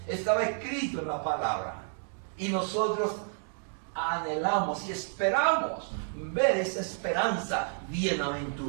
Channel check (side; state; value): left; silent; 57 dB below the other